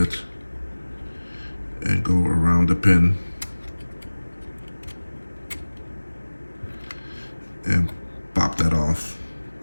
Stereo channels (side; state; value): both; inverted; correlation -1.00